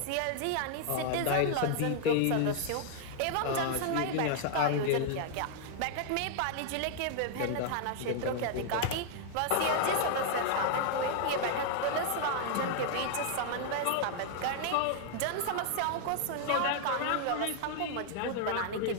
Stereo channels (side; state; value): both; different; correlation 0.00